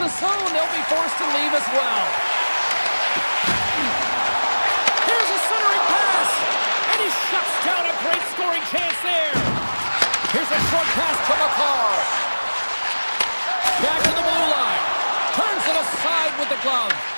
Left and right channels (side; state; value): both; inverted; correlation -1.00